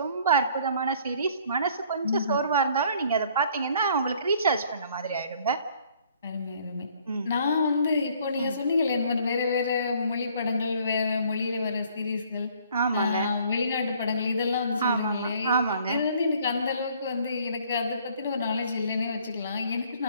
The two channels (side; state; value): both; inverted; correlation -0.59